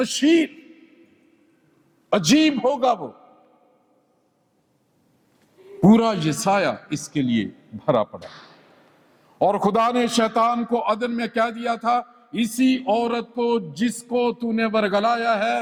عجیب ہوگا وہ۔ پورا یسایہ اس کے لیے بھرا پڑا، اور خدا نے شیطان کو عدن میں کہہ دیا تھا، اسی عورت کو جس کو تو نے ورگلایا ہے،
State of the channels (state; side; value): identical; both; correlation 1.00